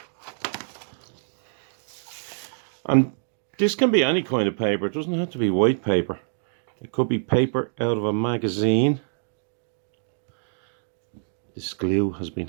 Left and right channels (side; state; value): left; silent; digital silence